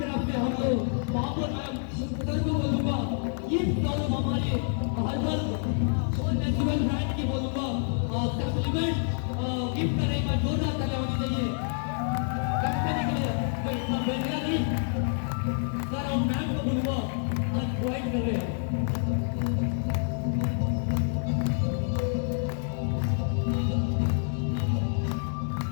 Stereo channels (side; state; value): right; silent; 59 dB below the other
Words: से हम लोग महापौर मैम सर को बोलूंगा, गिफ्ट और हमारे हर्बल और नेचुरल ब्रांड की बोलूँगा सप्लीमेंट गिफ्ट करने का जोरदार तालियां होनी चाहिए कंपनी के लिए। मैं इतना बेहतरीन नहीं सर, हम मैम को बोलूँगा आज प्रोवाइड कर रहे हैं।